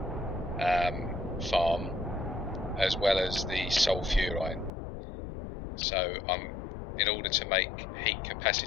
farm, as well as the sulfurine. So in order to make heat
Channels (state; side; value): drops out; right; at 4.7 s